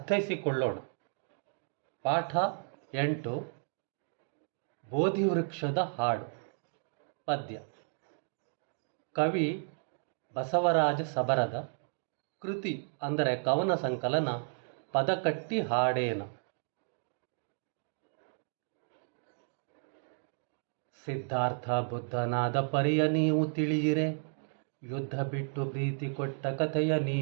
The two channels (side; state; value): left; silent; 56 dB below the other